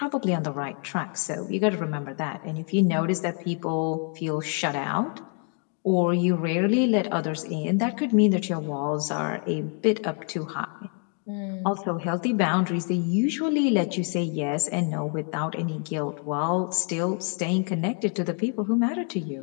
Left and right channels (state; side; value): quieter; right; 39.8 dB